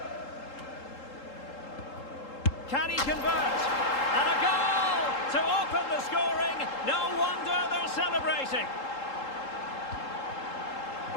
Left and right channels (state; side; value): late; right; 3.8 ms